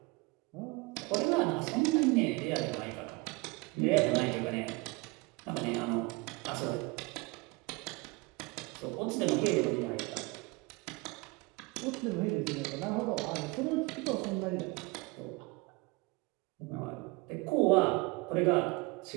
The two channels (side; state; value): left; quieter; 25.2 dB